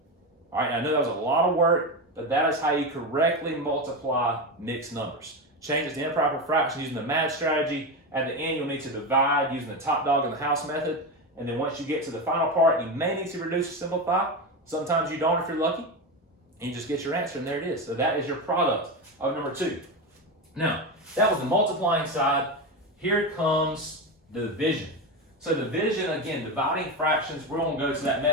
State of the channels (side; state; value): both; normal; correlation 0.17